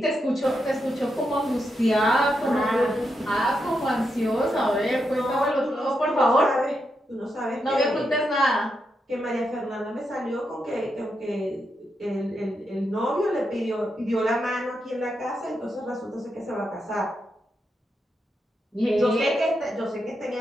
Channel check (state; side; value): normal; both; correlation 0.84